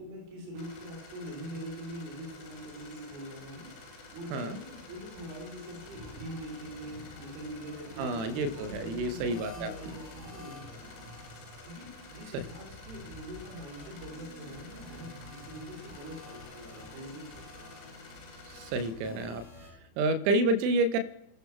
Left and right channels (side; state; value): left; late; 35 ms